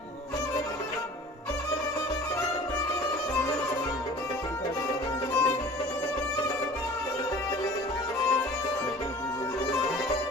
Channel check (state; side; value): normal; both; correlation 0.45